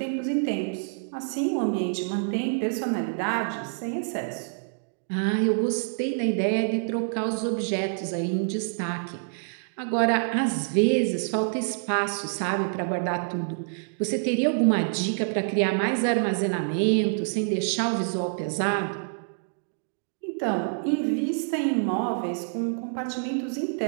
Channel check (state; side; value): silent; left; digital silence